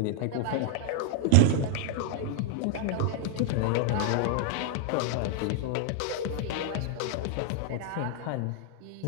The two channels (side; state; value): both; different; correlation 0.00